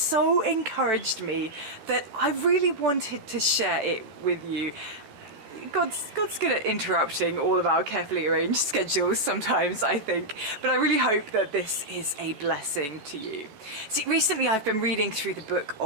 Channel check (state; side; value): late; left; 14 ms